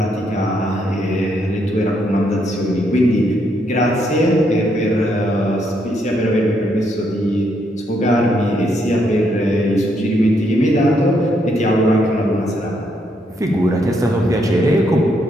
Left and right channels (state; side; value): normal; both; correlation 0.75